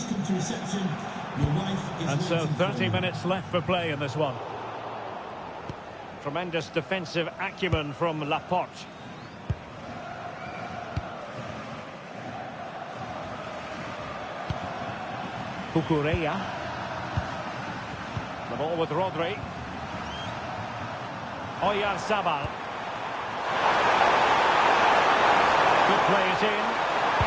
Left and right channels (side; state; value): both; identical; correlation 1.00